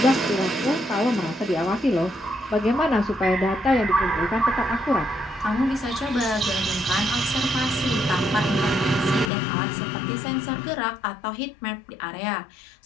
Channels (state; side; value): drops out; right; at 9.3 s